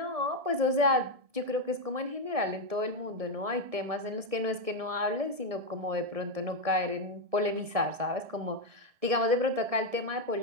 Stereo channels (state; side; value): late; left; 1.7 ms